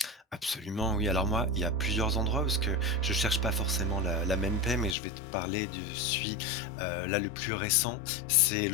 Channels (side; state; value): right; drops out; at 5.0 s